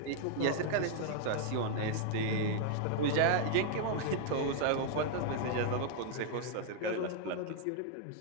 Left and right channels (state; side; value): different; both; correlation 0.00